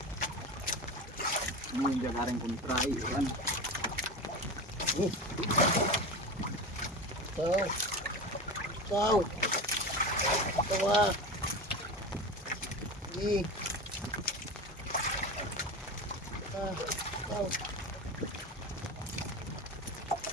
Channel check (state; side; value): normal; both; correlation 0.27